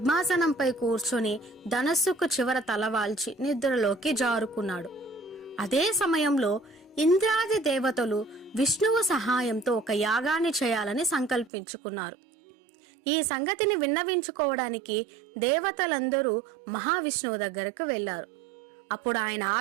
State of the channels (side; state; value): left; drops out; at 11.5 s